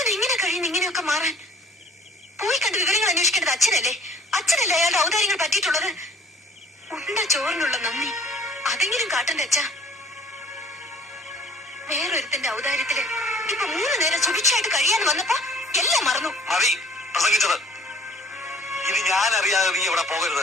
എങ്ങനെ കഴിയുന്നു ഇങ്ങനെയൊക്കെ മാറാൻ? പോയി കണ്ട് വിവരങ്ങൾ അന്വേഷിക്കേണ്ടത് അച്ഛനല്ലേ? അച്ഛനല്ലേ അയാളുടെ ഔദാര്യങ്ങൾ പറ്റിയിട്ടുള്ളത്? ഉണ്ട ചോറിനുള്ള നന്ദി അതെങ്കിലും കാട്ടണ്ടേ അച്ഛ? വേറൊരുത്തിന്റെ ഔദാര്യത്തില് ഇപ്പൊ 3 നേരം സുഭിക്ഷയായിട്ട് കഴിയാൻ വന്നപ്പോ എല്ലാം മറന്നു. മതി പ്രസംഗിച്ചത്. ഇനി ഞാൻ അറിയാതെ നീ ഇവിടെ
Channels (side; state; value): both; normal; correlation 0.53